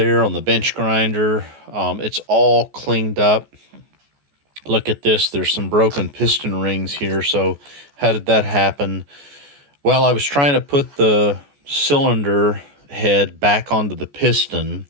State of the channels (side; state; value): left; late; 14 ms